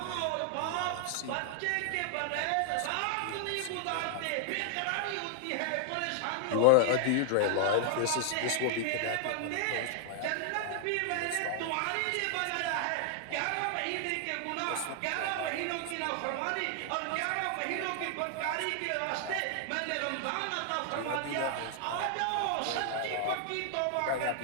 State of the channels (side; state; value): both; different; correlation 0.00